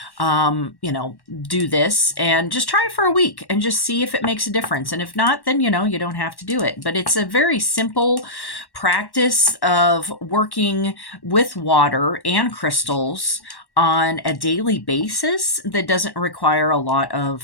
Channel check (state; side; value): late; right; 1.1 ms